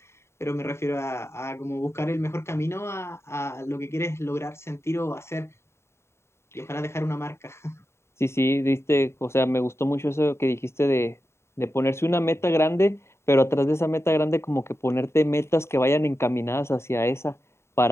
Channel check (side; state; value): right; late; 0.13 ms